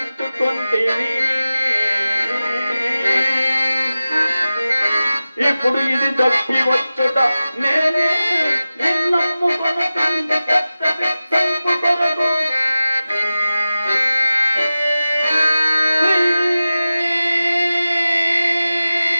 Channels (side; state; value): both; inverted; correlation -0.96